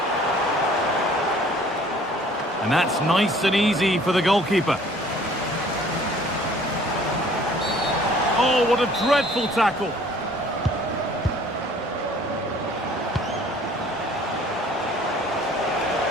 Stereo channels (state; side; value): normal; both; correlation 0.54